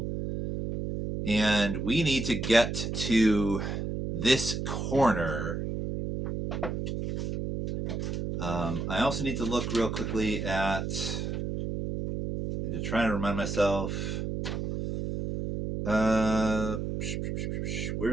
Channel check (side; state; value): right; noise; hum, 3 dB below the sound